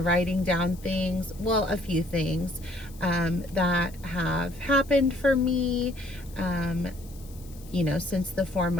writing down things, well, a few things that have happened for me, since the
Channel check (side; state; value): left; noise; hiss, 22 dB below the sound